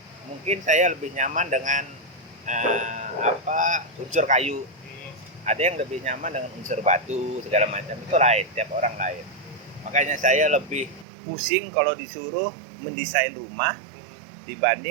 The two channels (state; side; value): drops out; left; at 11.1 s